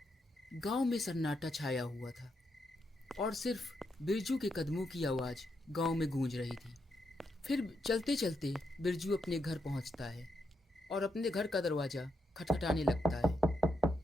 गांव में सन्नाटा छाया हुआ था और सिर्फ बिरजू के कदमों की आवाज़ गांव में गूंज रही थी। फिर चलते चलते बिरजू अपने घर पहुंचता है और अपने घर का दरवाज़ा खटखटाने लगता है।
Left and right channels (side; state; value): both; normal; correlation 0.81